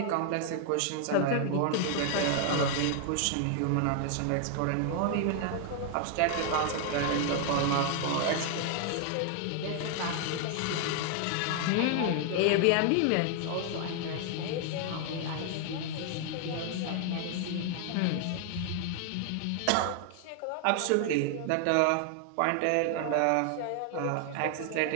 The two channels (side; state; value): both; different; correlation 0.00